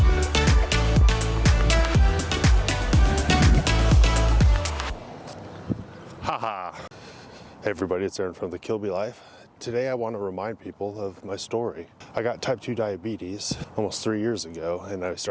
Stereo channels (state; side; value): identical; both; correlation 1.00